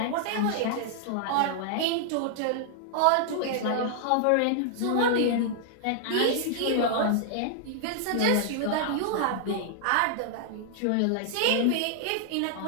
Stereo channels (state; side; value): different; both; correlation -0.01